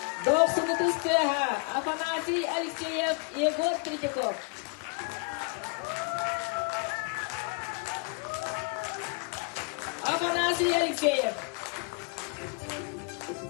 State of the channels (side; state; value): right; quieter; 33.9 dB